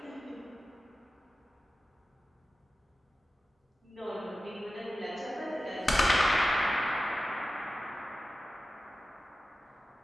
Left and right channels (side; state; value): both; normal; correlation 0.94